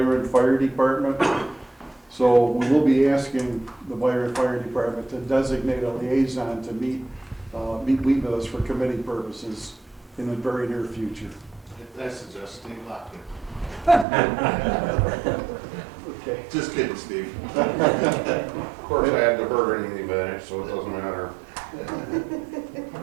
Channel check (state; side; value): drops out; left; at 14.1 s